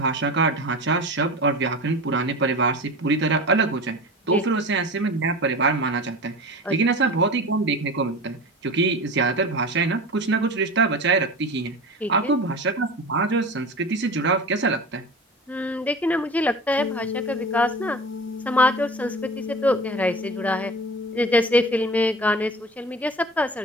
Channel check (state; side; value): normal; both; correlation 0.33